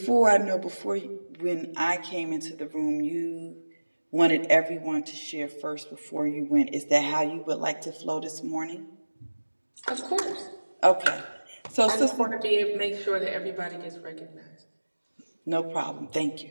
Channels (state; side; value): inverted; both; correlation -1.00